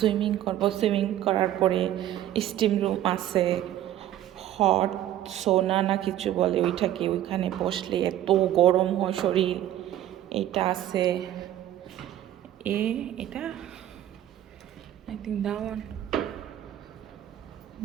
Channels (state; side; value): quieter; left; 12.5 dB